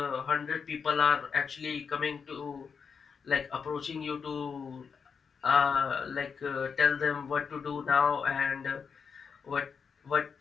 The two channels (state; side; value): quieter; right; 6.0 dB